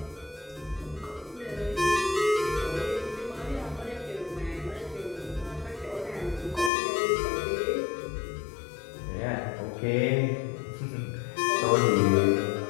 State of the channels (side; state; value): right; drops out; at 6.7 s